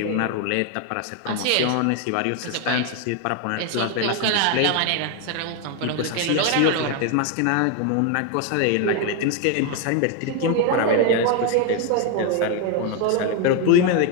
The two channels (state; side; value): different; both; correlation 0.01